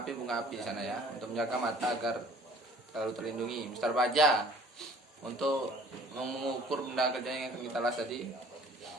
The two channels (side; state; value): both; normal; correlation 0.52